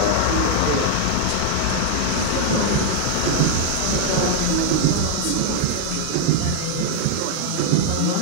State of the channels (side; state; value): both; different; correlation -0.01